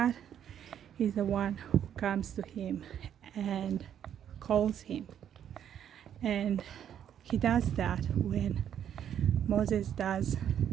is the one who comes to him and calls him. And he does that when Moses does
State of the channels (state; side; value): quieter; left; 9.5 dB